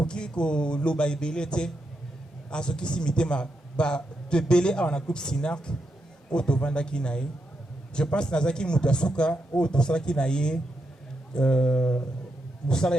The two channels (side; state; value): both; normal; correlation 0.83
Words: pu loba ebelete à ce qui s'imite ma de belé à un groupe Sinac au Tovanda Kinaï. Je pense que Nazaki Mutasuka au Tosala Kinaï Moussala